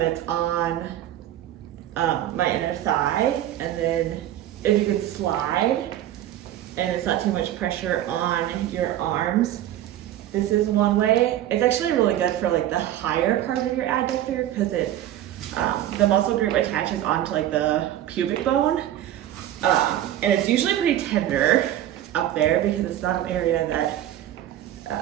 it's on my inner thigh, and then if you can slide and it's not too much pressure on your arms, this is one way. It's actually really good for like the higher part of your adductor because it the muscle group attaches onto like the pubic bone, and it's usually pretty tender up there because it's not an area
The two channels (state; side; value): quieter; left; 12.4 dB